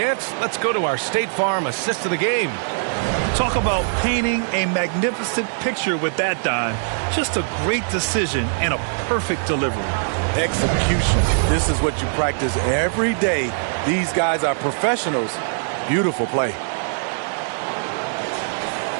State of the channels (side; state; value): left; silent; 64 dB below the other